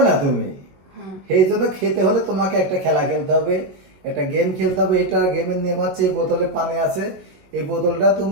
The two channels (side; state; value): left; late; 21 ms